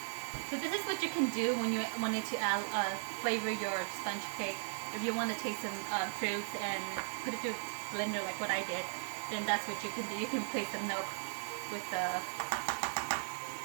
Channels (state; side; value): silent; left; digital silence